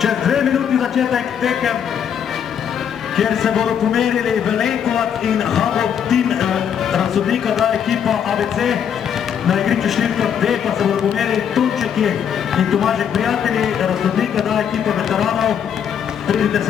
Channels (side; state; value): right; quieter; 8.4 dB